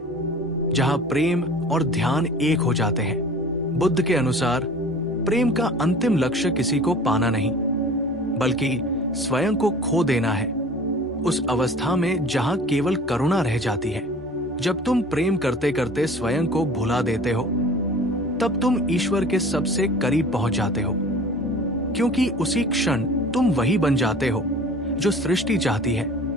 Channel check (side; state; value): both; normal; correlation 0.44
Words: जहां प्रेम और ध्यान एक हो जाते हैं। बुद्ध के अनुसार प्रेम का अंतिम लक्ष्य किसी को पाना नहीं, बल्कि स्वयं को खो देना है। उस अवस्था में जहां केवल करुणा रह जाती है। जब तुम प्रेम करते करते स्वयं को भुला देते हो, तब तुम ईश्वर के सबसे करीब पहुंच जाते हो, क्योंकि उसी क्षण तुम वही बन जाते हो जो सृष्टि चाहती है,